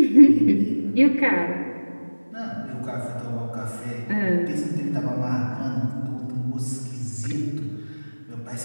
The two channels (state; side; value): inverted; both; correlation -1.00